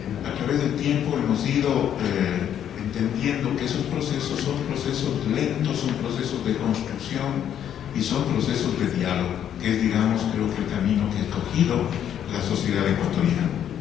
a través del tiempo hemos ido entendiendo que esos procesos son procesos lentos, son procesos de construcción y son procesos de diálogo, que es, digamos, creo que el camino que ha escogido la sociedad ecuatoriana.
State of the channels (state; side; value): quieter; right; 9.8 dB